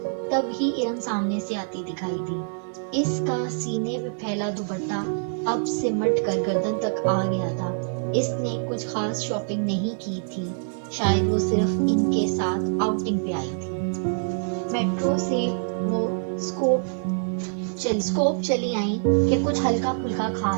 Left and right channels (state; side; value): silent; left; digital silence